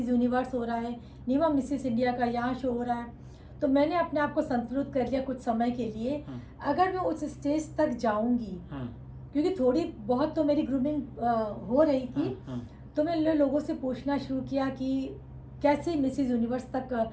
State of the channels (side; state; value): both; identical; correlation 1.00